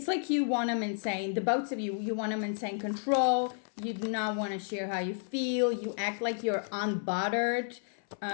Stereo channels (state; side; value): silent; right; 57 dB below the other